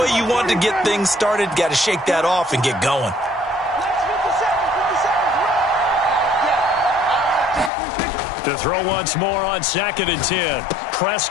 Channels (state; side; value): drops out; right; at 7.7 s